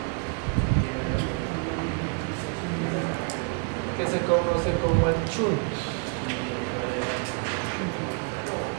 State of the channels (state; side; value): quieter; left; 35.1 dB